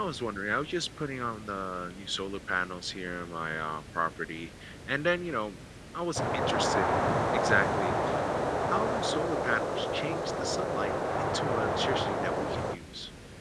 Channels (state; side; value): identical; both; correlation 1.00